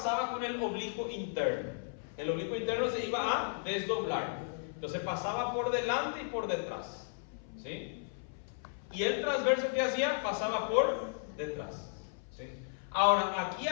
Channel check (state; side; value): silent; right; 55 dB below the other